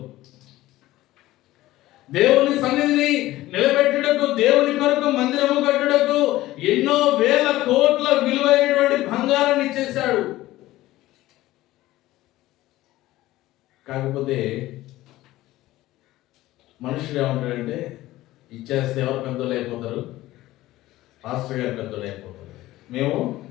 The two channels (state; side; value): quieter; right; 16.5 dB